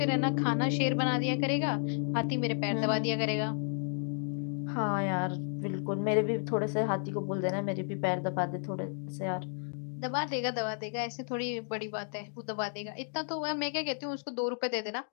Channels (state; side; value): silent; right; digital silence